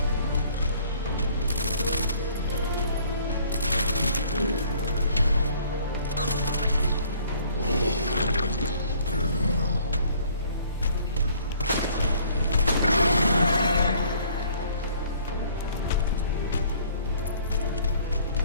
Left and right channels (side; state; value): both; inverted; correlation -0.57